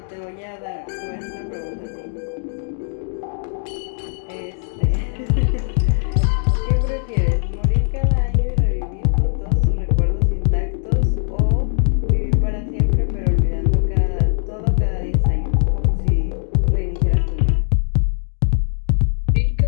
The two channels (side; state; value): right; silent; 66 dB below the other